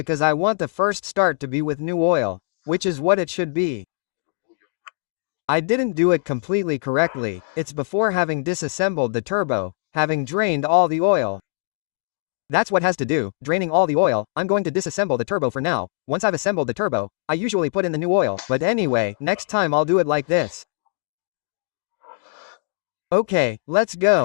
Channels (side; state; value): right; silent; digital silence